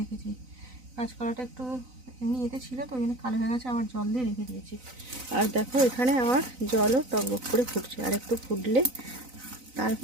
কাঁচকলাটা একটু এমনি এতে ছিল তো, ওই জন্য কালো হয়ে গেছে, আবার জল দিয়ে রেখে দিয়েছি। আর দেখো এখানে আমার জলও টকবক করে ফুটছে, আর একটু ফুটলে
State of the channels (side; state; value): left; late; 4.0 ms